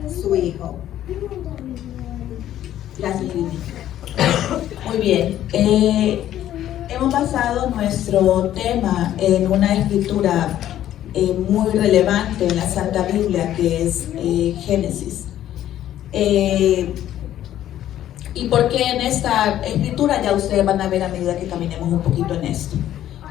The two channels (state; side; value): quieter; right; 12.1 dB